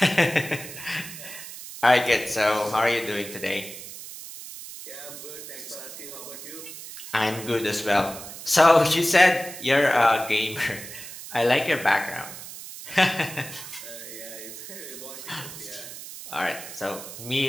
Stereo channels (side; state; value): right; noise; hiss, 12 dB below the sound